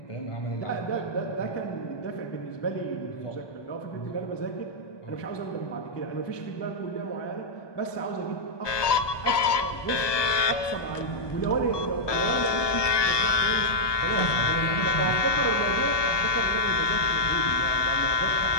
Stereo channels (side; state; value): right; late; 1.2 ms